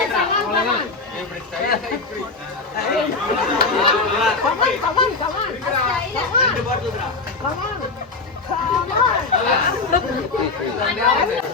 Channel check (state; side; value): quieter; right; 3.9 dB